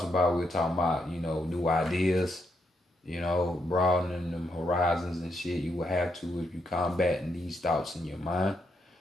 about, we're talking about, you know, new ideas, you know, broadening them horizons and shit. You will have to if you combating these thoughts in your mind.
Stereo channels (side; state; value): both; normal; correlation 0.79